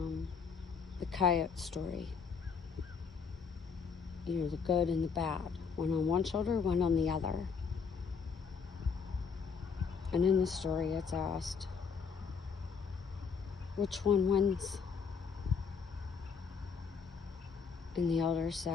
coyote story. You know, the good and the bad. One on one shoulder, one on the other. And in the story, it's asked, which one wins? And the elder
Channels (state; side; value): quieter; right; 5.8 dB